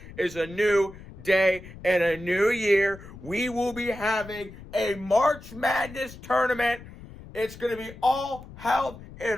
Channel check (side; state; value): left; noise; rumble, 16 dB below the sound